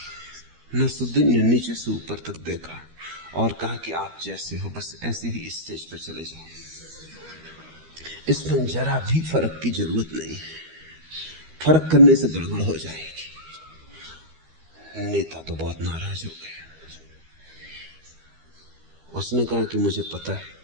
नसरुद्दीन ने नीचे से ऊपर तक देखा और कहा कि आप जैसे हो बस ऐसे ही स्टेज पर चले जाओ, इसमें जरा भी फर्क की जरूरत नहीं है, फर्क करने से गड़बड़ हो जाएगी। नेता तो बहुत नाराज हो गया। उसने कहा कि मुझे पता है,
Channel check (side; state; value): left; late; 13 ms